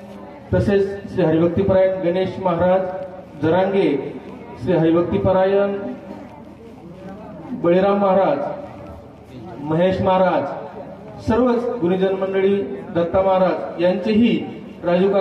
तसेच श्री हरिभक्तीपरायण गणेश महाराज जरांगे, श्री हरिभक्तीपरायण बळीराम महाराज, महेश महाराज, सर्वच गुरुजन मंडळी, दत्ता महाराज यांचेही राजू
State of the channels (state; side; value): identical; both; correlation 1.00